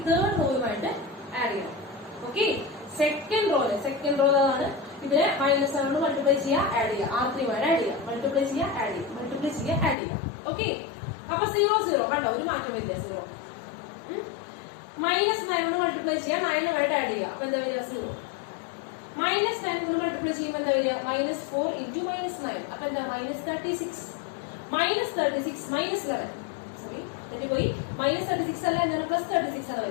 തേർഡ് റോയുമായിട്ട് ആഡ് ചെയ്യണം. ഓക്കെ, സെക്കൻഡ് റോ ആണ്. ഇതിനെ -7 കൊണ്ട് മൾട്ടിപ്ലൈ ചെയ്യുക, ആഡ് ചെയ്യുക, R3 ആഡ് ചെയ്യുക, മൾട്ടിപ്ലൈ ചെയ്യുക, ആഡ് ചെയ്യുക, മൾട്ടിപ്ലൈ ചെയ്യുക, ആഡ് ചെയ്യുക. ഓക്കെ, അപ്പൊ 0 0 കണ്ടോ, ഒരു മാറ്റം വരില്ല. 0 -9 കൊണ്ട് മൾട്ടിപ്ലൈ ചെയ്യുക, 9 ആയിട്ട് ആഡ് ചെയ്യുക. അപ്പൊ എന്താ വരിക? 0. -9 കൊണ്ട് മൾട്ടിപ്ലൈ ചെയ്യുമ്പോൾ എന്താ വരിക? -4 into -9. അപ്പൊ എന്താ? -36. -36 -11 സോറി തെറ്റിപ്പോയി. -36 അല്ല, എന്താണ്? +36 ആണ്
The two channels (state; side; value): drops out; right; at 10.0 s